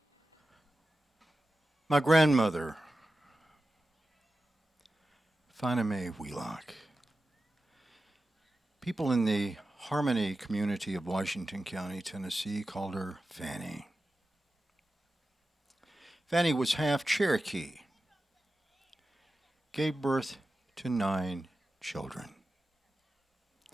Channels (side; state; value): both; normal; correlation 0.93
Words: My grandmother, Swannanoa Wheelock. People in the Harmony community of Washington County, Tennessee, called her Fanny. Fanny was half Cherokee, gave birth to 9 children.